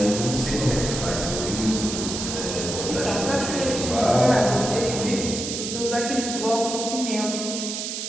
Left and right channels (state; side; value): noise; right; hiss, 5 dB below the sound